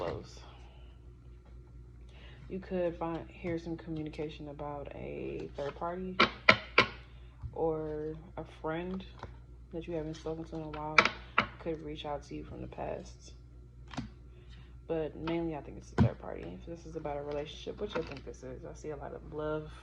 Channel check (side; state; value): both; identical; correlation 1.00